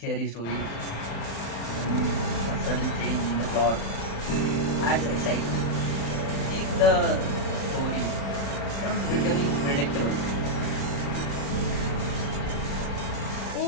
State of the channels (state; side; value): late; right; 35 ms